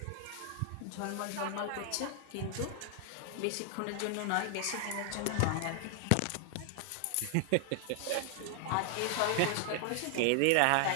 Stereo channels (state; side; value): different; both; correlation 0.00